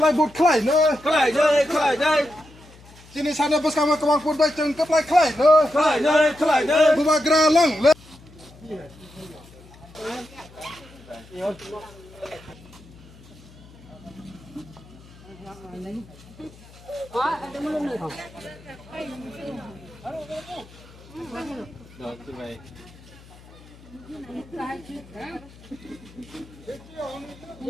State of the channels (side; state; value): left; noise; hum, 22 dB below the sound